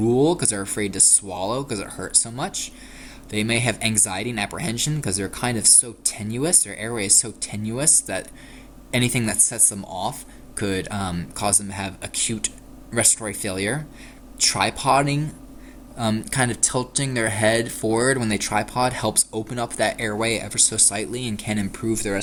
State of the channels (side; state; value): both; identical; correlation 1.00